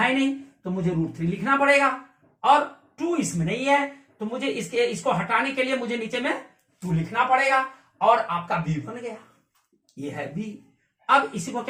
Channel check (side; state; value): both; identical; correlation 1.00